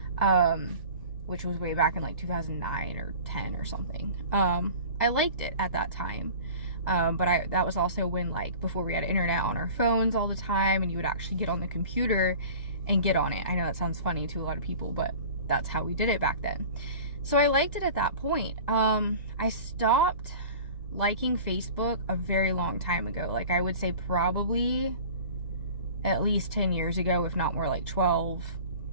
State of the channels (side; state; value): both; inverted; correlation -0.41